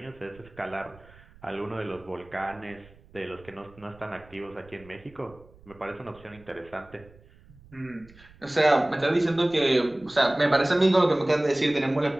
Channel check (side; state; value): right; noise; rumble, 25 dB below the sound